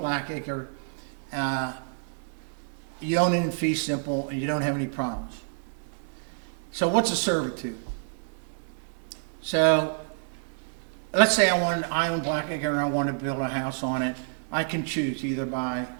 Blackacre, you own it in fee simple and you don't have any problems. So what's a servitude? So let's say I own Blackacre and I want to build a house on it. I can choose either by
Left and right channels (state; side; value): silent; left; 59 dB below the other